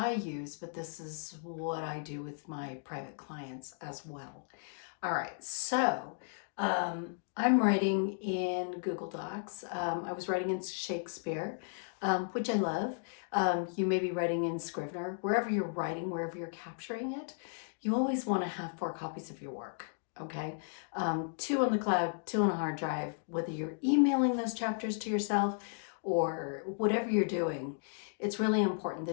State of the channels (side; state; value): right; silent; digital silence